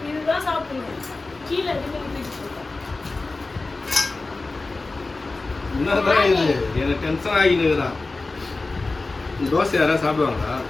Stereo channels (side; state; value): right; quieter; 3.4 dB